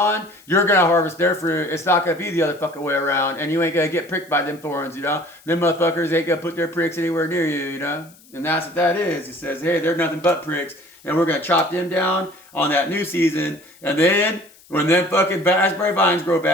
you're going to harvest their fruit. It's not going to be the other fucking way around. And you ain't going to get pricked by them thorns, you know. Them motherfuckers ain't going to put their pricks anywhere near you, you know. And that's what that is. It says, hey, they're nothing but pricks. And we're going to chop them down on that new season. And then when them fucking raspberry vines grow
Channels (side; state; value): left; noise; hiss, 26 dB below the sound